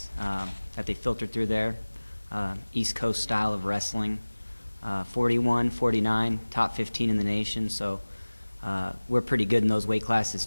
that they filtered through there. East Coast style of wrestling. 41, 49, top 15 in the nation. So we're pretty good in those weight classes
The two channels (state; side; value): inverted; both; correlation -1.00